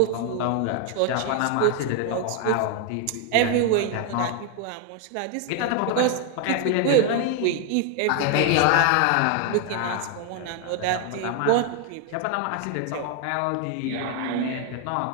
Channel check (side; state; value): both; different; correlation 0.00